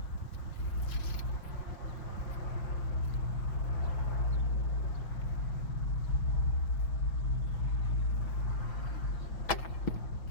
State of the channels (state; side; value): late; right; 6.2 ms